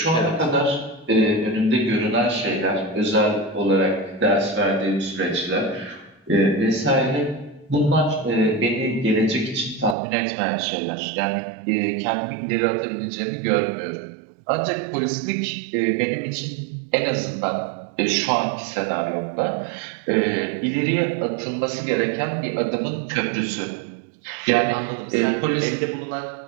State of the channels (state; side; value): drops out; left; at 10.0 s